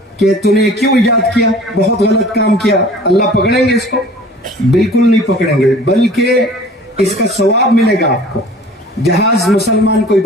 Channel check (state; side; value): normal; both; correlation 0.47